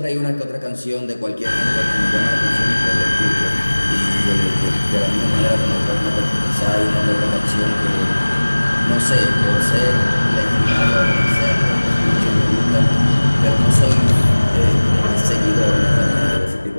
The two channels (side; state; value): both; inverted; correlation -1.00